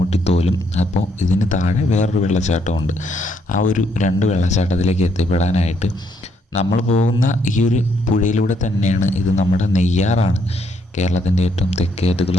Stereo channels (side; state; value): both; normal; correlation 0.72